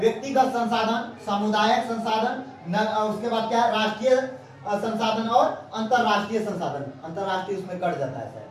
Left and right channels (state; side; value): identical; both; correlation 1.00